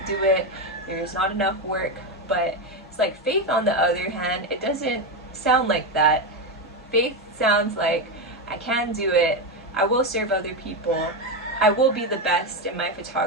do it, there's not enough work. But it's like faith, on the other hand, it doesn't sound like that. Faith sounds like, I can do it, I will serve other people, I will be the best in my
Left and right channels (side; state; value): both; normal; correlation 0.11